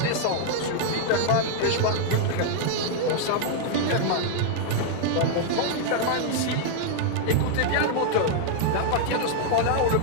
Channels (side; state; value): both; different; correlation -0.01